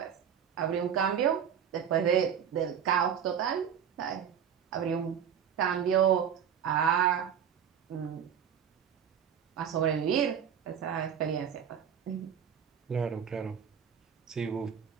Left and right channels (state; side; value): quieter; left; 8.3 dB